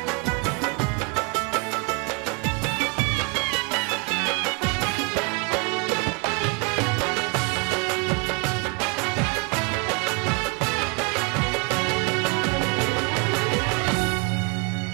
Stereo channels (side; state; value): left; quieter; 30.9 dB